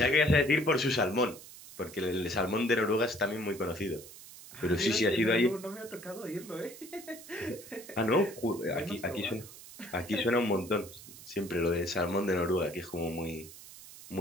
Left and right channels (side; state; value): right; noise; hiss, 17 dB below the sound